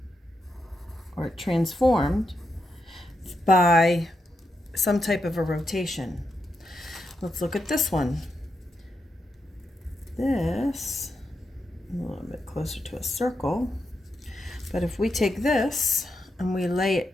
or transformed by some type of a rotation. Let's look at this one. This, a little bit closer to a circle, but if we take this and we lay it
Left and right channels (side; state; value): both; normal; correlation 0.84